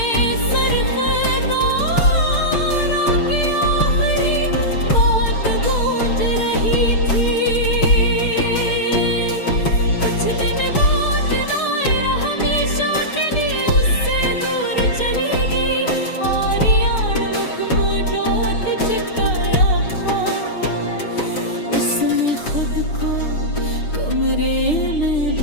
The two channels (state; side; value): late; right; 6.7 ms